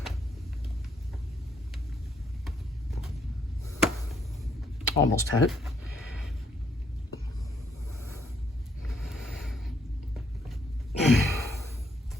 Almost had it.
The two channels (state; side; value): normal; both; correlation 0.71